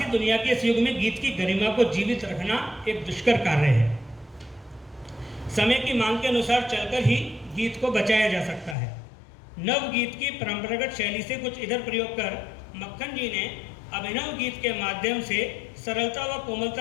दुनिया के इस युग में गीत की गरिमा को जीवित रखना एक दुष्कर कार्य है। समय की मांग के अनुसार चलकर ही गीत को बचाया जा सकता है। नव गीत की परंपरागत शैली से कुछ इधर प्रयोग कर मक्खन जी ने अभिनव गीत के माध्यम से सरलता व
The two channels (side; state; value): right; drops out; at 8.8 s